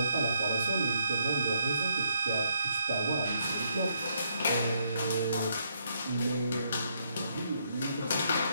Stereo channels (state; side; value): inverted; both; correlation -0.73